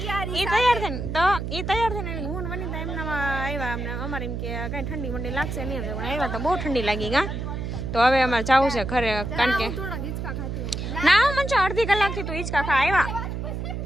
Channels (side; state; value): right; noise; hum, 4 dB below the sound